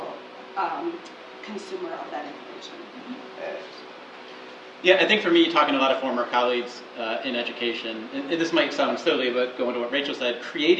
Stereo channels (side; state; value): both; identical; correlation 1.00